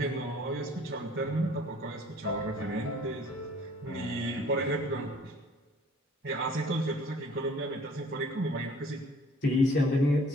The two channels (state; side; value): normal; both; correlation 0.53